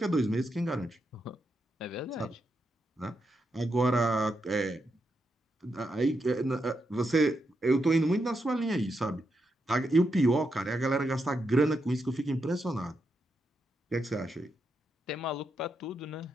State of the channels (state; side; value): normal; both; correlation 0.83